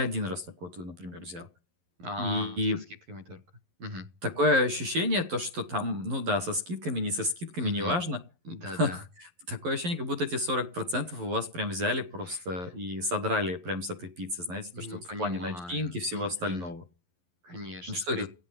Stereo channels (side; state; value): left; late; 11 ms